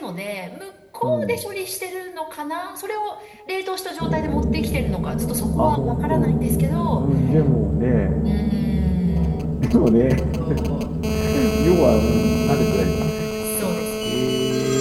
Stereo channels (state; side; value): identical; both; correlation 1.00